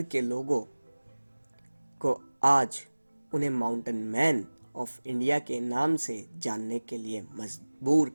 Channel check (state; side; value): inverted; both; correlation -1.00